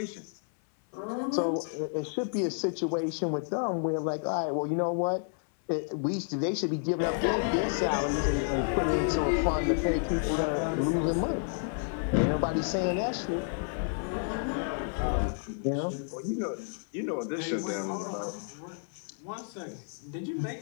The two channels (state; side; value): silent; right; 56 dB below the other